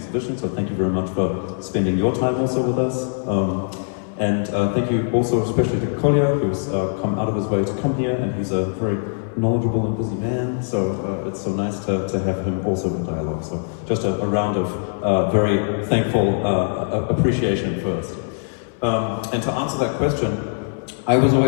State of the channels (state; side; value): silent; right; 64 dB below the other